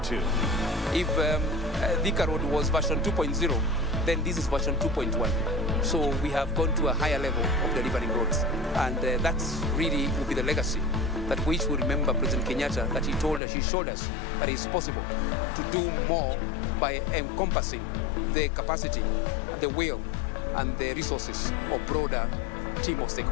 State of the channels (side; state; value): right; drops out; at 13.4 s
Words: If Thika Road was version 2.0, then this is version 2.1. So we have gone to a higher level of delivering roads. And that's really will be the legacy that which we remember President Kenyatta, that he showed us that it's possible to do more by encompassing the capacity, the will, and the resources of broader team of